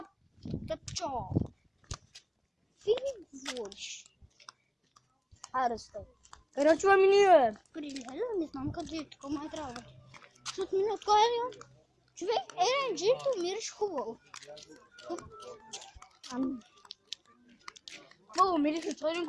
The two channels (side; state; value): both; identical; correlation 1.00